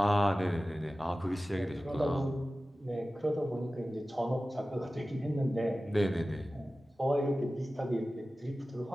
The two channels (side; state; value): both; normal; correlation 0.96